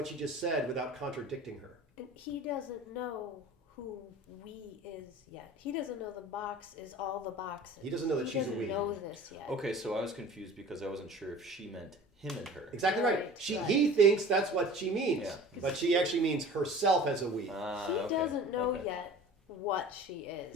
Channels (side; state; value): both; normal; correlation 0.42